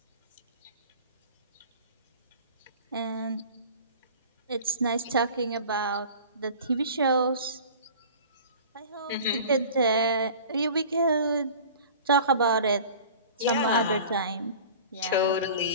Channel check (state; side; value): inverted; both; correlation -0.41